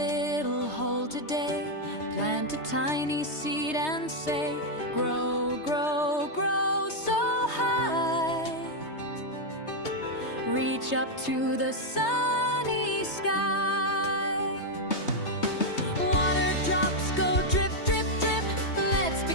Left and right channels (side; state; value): right; late; 3.2 ms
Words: hole today, plant a tiny seed and say, grow, grow, grow so high. Reach up to the sunny sky. Water drops go drip, drip, drip. Let's